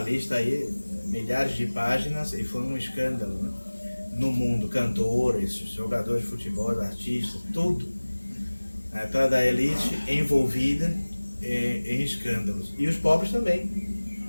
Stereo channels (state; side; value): inverted; both; correlation -1.00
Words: lista aí, milhares de páginas, e foi um escândalo, né? No mundo, cantores, jogadores de futebol, artistas, tudo. Atrás da elite envolvida em escândalos. E os pobres também.